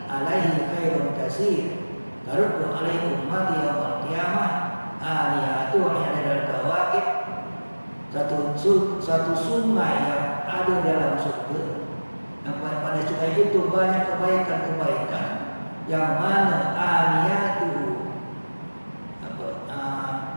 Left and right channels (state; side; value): inverted; both; correlation -1.00